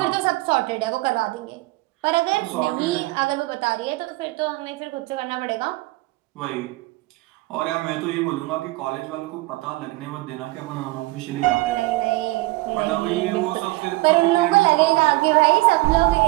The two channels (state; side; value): quieter; left; 20.9 dB